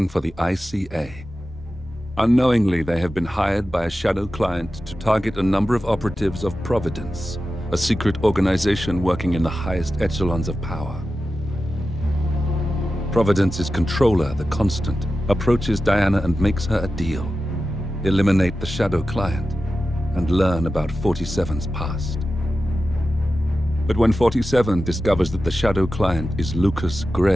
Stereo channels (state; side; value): normal; both; correlation 0.93